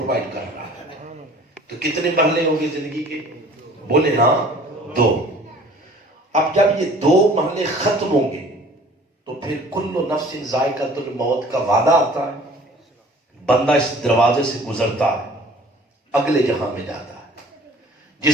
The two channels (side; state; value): both; normal; correlation 0.50